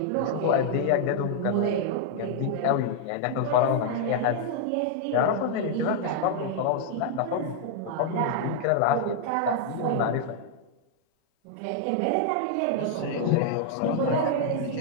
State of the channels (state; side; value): different; both; correlation 0.00